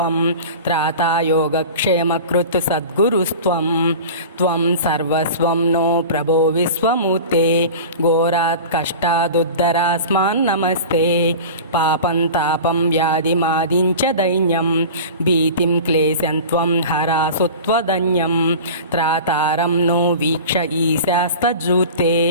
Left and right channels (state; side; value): inverted; both; correlation -0.35